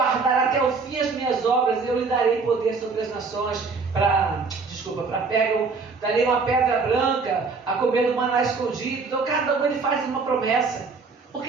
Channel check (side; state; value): left; quieter; 4.6 dB